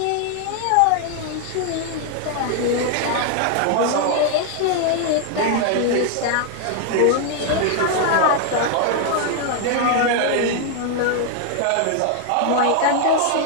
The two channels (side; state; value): both; different; correlation 0.00